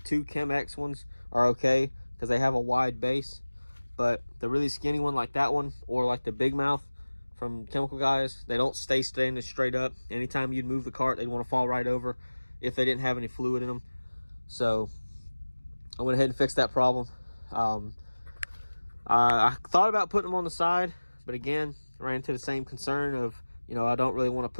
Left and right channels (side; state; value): both; inverted; correlation -1.00